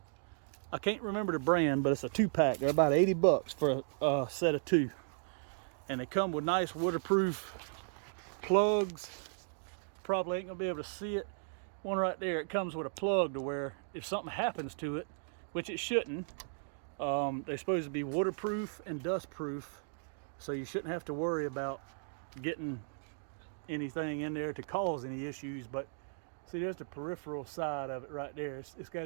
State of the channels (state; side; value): silent; left; digital silence